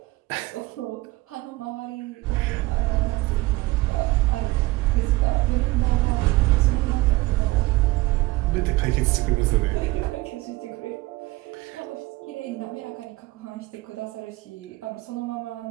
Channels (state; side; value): quieter; left; 20.3 dB